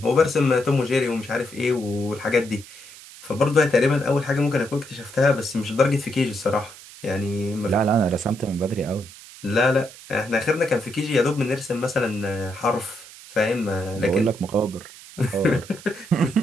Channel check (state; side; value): noise; right; hiss, 18 dB below the sound